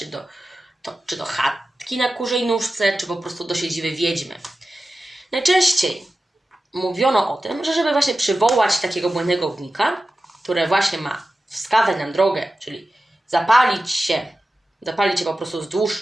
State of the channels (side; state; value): both; normal; correlation 0.94